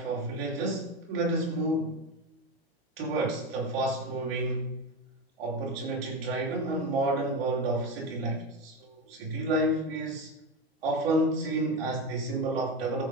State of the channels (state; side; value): normal; both; correlation 0.17